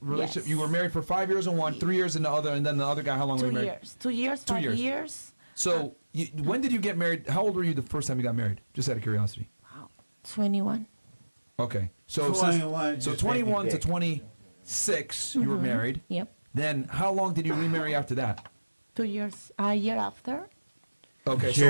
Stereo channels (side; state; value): both; inverted; correlation -1.00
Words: Yes. you were married for 5 years in one, 3 years in the other, and then the other guy, how long were 2 you married? years. 2 years. 2 5 years. years. So when did you get married? How old were you the first time you got married? Just out of curiosity. Wow. 21. Okay. So 21, so just 21 make to it big. 26, you were married. Yep. Then how long did you remarry after that? 2 years. A year after. Okay.